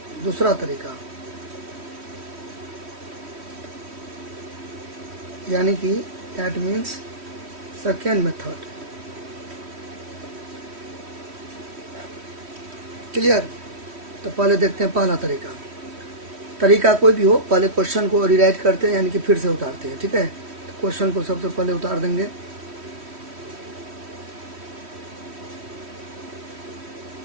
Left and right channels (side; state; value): left; late; 3.1 ms